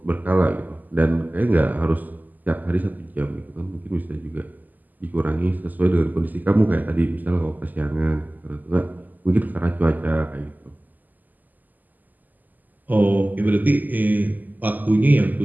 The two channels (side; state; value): left; late; 0.084 ms